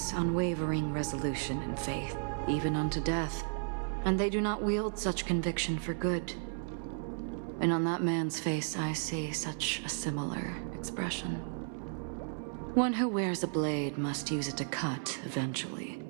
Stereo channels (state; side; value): silent; left; 55 dB below the other